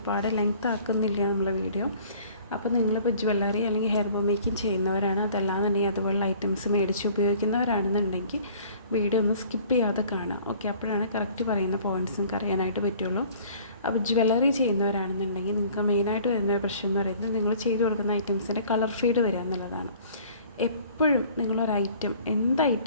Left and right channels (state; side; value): inverted; both; correlation -0.51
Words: ലെങ്ത് ആക്കുന്നില്ല നമ്മളെ വീഡിയോ. അപ്പോൾ നിങ്ങളിപ്പോൾ ജ്വല്ലറി അല്ലെങ്കിൽ ഹെയർ ബോ മേക്കിംഗ് ചെയ്യുന്നവരാണ്, അതല്ലാന്നുണ്ടെങ്കിൽ അതുപോലുള്ള ഐറ്റംസ് മേടിച്ച് ഉപയോഗിക്കുന്നവരാണെന്നുണ്ടെങ്കിൽ വീഡിയോ ഒന്ന് സ്കിപ്പ് ചെയ്യാതെ കാണാം. ഓക്കെ, അപ്പോഴാണ് കറക്റ്റ് പറയുന്ന പോയിൻറ്റ്സ് നിങ്ങൾക്ക് അറിയാനായിട്ട് പറ്റുള്ളൂ. അപ്പോൾ ജ്വല്ലറി ചെയ്യുന്നവരാണെന്നുണ്ടെങ്കിൽ നിങ്ങൾക്ക് മെയിനായിട്ട് വരുന്ന ഒരു പ്രശ്നം എന്ന് പറയുന്നത് നിങ്ങൾ ചെയ്തു കൊടുക്കുന്ന ഐറ്റംസിൻ്റെ കളർ ഫീഡ് വരിക എന്നുള്ളതാണ്. എപ്പോഴും നിങ്ങളൊരു ഐറ്റം, എന്ത്